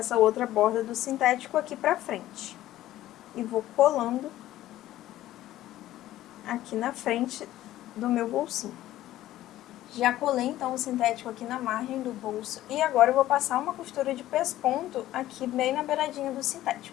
outra borda do sintético aqui pra frente. E vou colando aqui na frente do meu bolsinho. Já colei então o sintético aqui na margem do bolso e agora eu vou passar uma costura de pesponto aqui bem na beiradinha do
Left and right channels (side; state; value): right; quieter; 14.4 dB